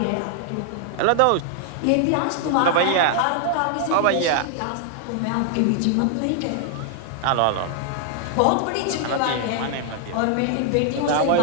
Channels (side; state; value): both; different; correlation 0.00